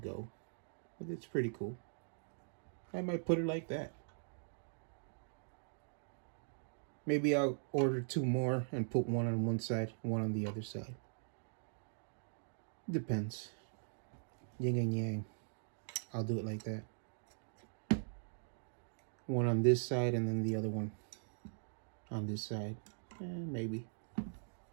But it's pretty cool. I might put it like that. Maybe I'll order two more and put one on one side, one on the other side. Depends. Yin and yang. I'll do it like that. One on this side and then the other one on this side. Maybe.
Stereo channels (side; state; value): left; silent; digital silence